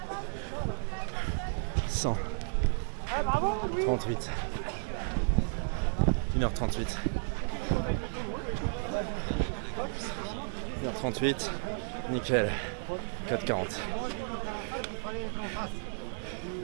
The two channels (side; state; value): left; silent; digital silence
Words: 100. 38. 1h38. 1h38. Nickel. 4h40.